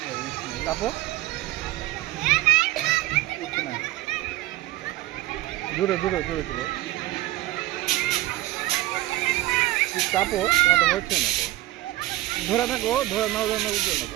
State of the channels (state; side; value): quieter; left; 16.7 dB